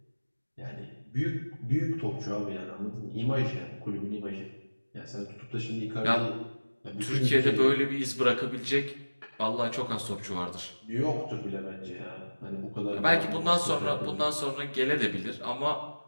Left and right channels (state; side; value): inverted; both; correlation -1.00